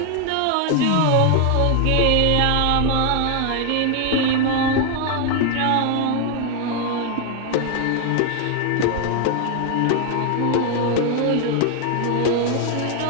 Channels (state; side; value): different; both; correlation 0.01